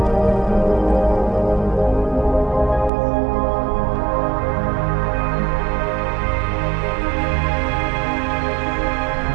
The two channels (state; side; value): drops out; left; at 2.9 s